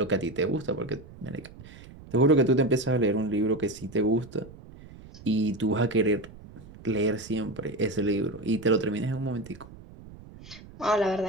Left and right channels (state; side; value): noise; right; rumble, 18 dB below the sound